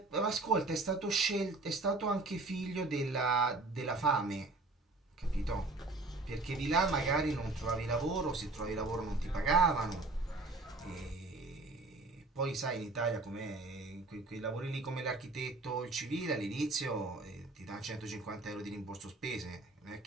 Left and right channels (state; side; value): quieter; left; 3.2 dB